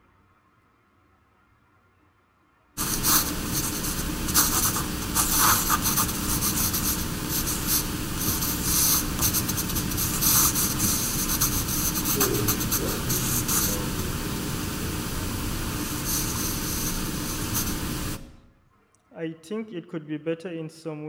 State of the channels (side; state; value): both; identical; correlation 1.00